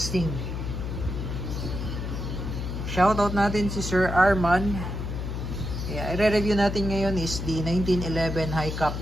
Shoutout natin si Sir Arman. I-review natin ngayon is the 1911 High Cap.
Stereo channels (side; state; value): left; noise; hum, 4 dB below the sound